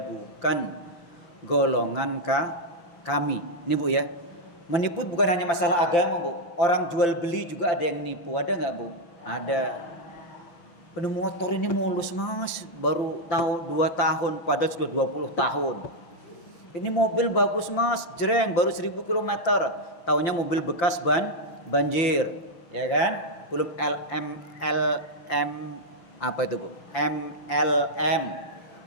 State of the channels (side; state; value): right; late; 5.9 ms